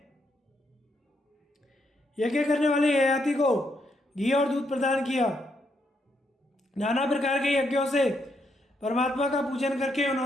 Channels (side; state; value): both; normal; correlation 0.77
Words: यज्ञ करने वाले ययाति को घी और दूध प्रदान किया। नाना प्रकार के यज्ञों से परमात्मा का पूजन करके